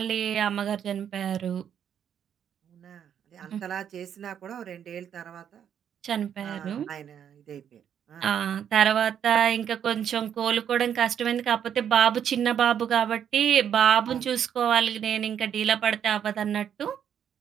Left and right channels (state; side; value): quieter; left; 8.9 dB